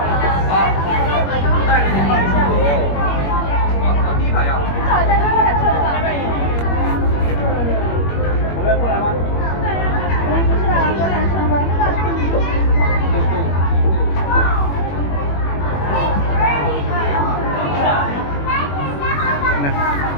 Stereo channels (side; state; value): right; late; 21 ms